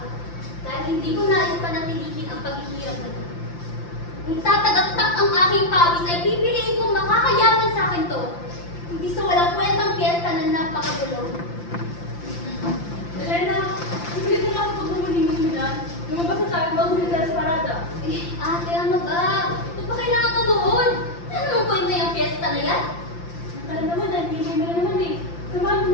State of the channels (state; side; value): late; right; 5.8 ms